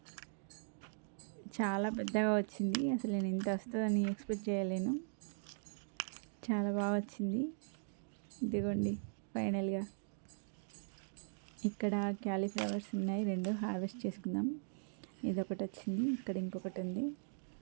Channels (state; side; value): silent; left; digital silence